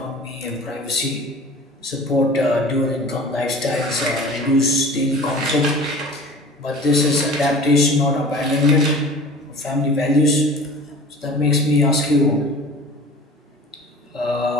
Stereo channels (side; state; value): both; normal; correlation 0.42